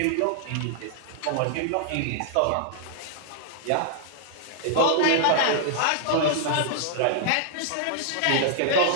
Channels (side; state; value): both; different; correlation -0.01